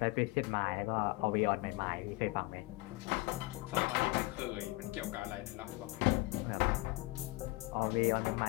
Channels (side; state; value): right; quieter; 22.1 dB